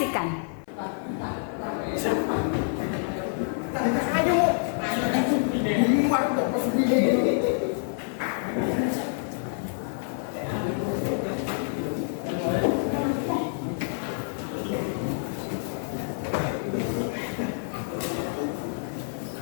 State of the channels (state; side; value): silent; right; 60 dB below the other